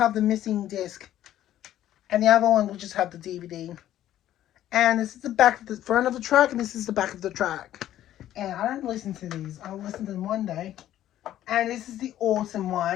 the missing disc. And the other one will just have the DVD. And this is the back of the front of the track, and this is the back of the track. And I don't listen to these. I'll listen to them one day. And this is the autumn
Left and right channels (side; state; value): right; quieter; 12.5 dB